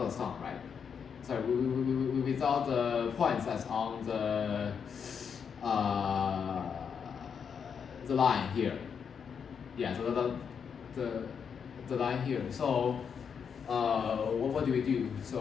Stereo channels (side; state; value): right; quieter; 6.8 dB